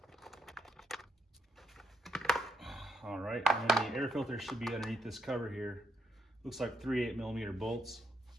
All right, and then the air filter should be underneath this cover here. Looks like 3 8mm bolts.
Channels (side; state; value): both; normal; correlation 0.79